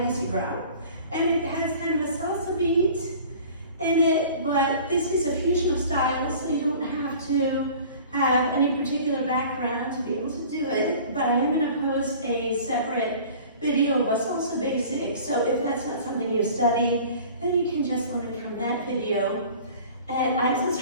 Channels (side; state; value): both; inverted; correlation -0.45